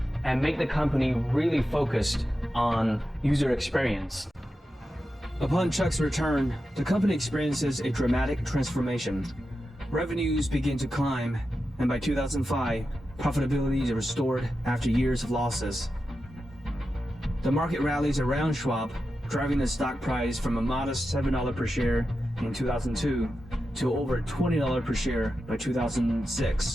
and made the company really focused on user experience. Upon Chuck's return, the company experiences a dramatic transformation. Revenues begin to climb, and by 2005, profitability is restored after years of losses. The market rallies around Schwab, driving the stock price from a modest $7 per share in 2002 to over $20 per share by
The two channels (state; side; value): normal; both; correlation 0.90